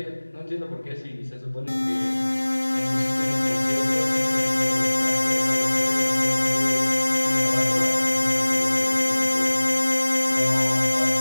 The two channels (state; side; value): inverted; both; correlation -1.00